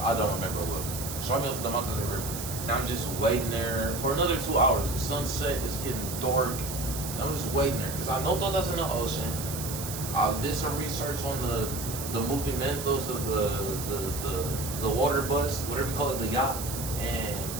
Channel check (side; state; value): right; noise; hiss, 7 dB below the sound